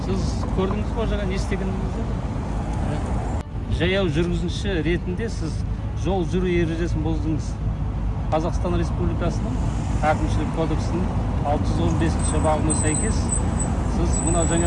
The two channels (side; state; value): both; identical; correlation 1.00